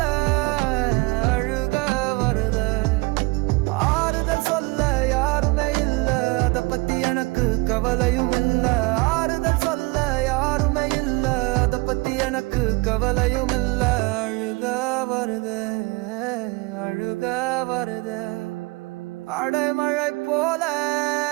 அழுக வருதே ஆறுதல் சொல்ல யாருமே இல்ல அத பத்தி எனக்கு கவலையும் இல்ல ஆறுதல் சொல்ல யாருமே இல்ல அத பத்தி எனக்கு கவலையும் இல்ல அழுக வருதே அழுக வருதே அடைமழை போல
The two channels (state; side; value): quieter; left; 25.9 dB